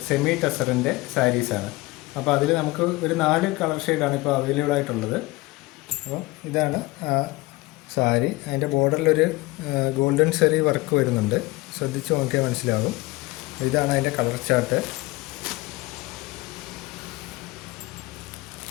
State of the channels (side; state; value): right; quieter; 21.1 dB